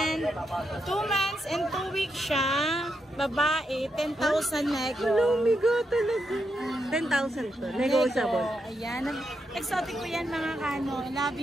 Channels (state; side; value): normal; both; correlation 0.83